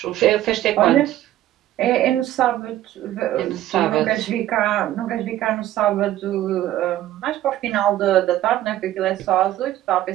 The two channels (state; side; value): quieter; left; 13.7 dB